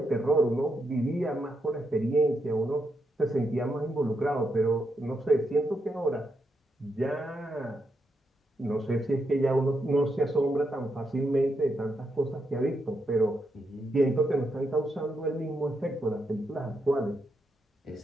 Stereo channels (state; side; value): normal; both; correlation 0.82